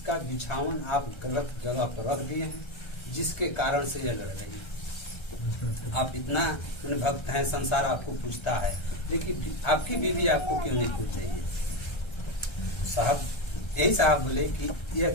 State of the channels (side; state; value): right; late; 1.3 ms